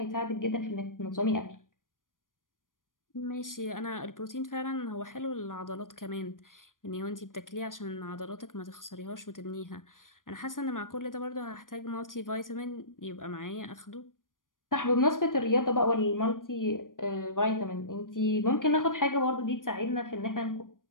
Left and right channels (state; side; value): late; right; 0.89 ms